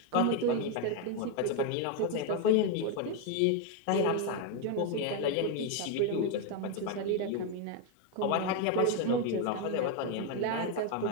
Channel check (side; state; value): both; different; correlation 0.01